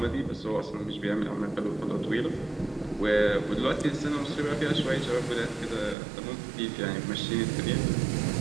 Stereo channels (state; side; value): drops out; left; at 6.0 s